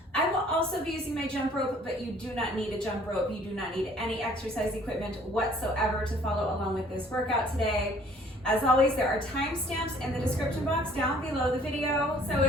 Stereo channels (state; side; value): normal; both; correlation 0.56